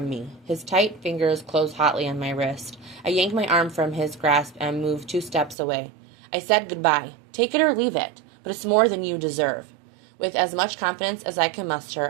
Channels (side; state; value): left; drops out; at 5.6 s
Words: me. His tight fingers close hotly on my wrist. I yank my arm from his grasp and move 2 steps away. I said goodbye. Take it or leave it, but it's more than you deserve. With as much confidence as I can